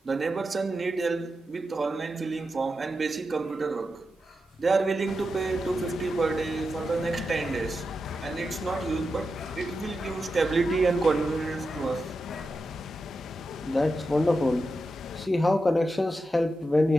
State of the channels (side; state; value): both; normal; correlation 0.89